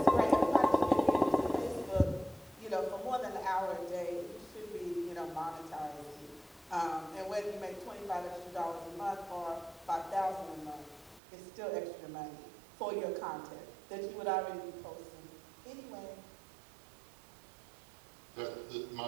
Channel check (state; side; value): drops out; left; at 11.2 s